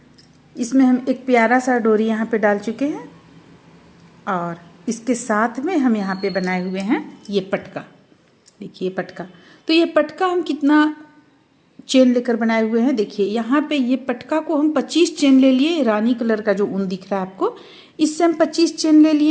इसमें हम एक प्यारा सा डोरी यहाँ पे डाल चुके हैं और इसके साथ में हम यहाँ पे बनाए हुए हैं ये पटका। देखिए पटका, तो ये पटका हम कितना चेन लेकर बनाए हुए हैं। देखिए यहाँ पे ये पटका को हम 25 चेन ले लिए, रानी कलर का जो ऊन दिख रहा है आपको, इससे हम 25 चेन ले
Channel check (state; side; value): identical; both; correlation 1.00